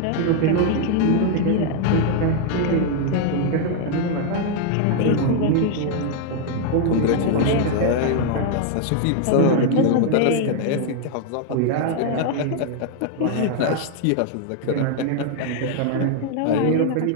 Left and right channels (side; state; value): both; different; correlation 0.00